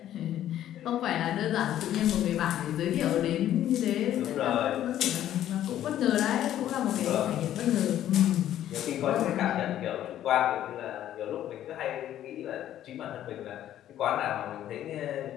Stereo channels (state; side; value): quieter; right; 11.9 dB